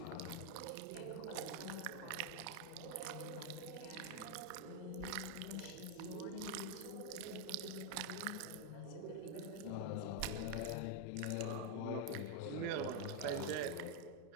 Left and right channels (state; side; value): different; both; correlation 0.01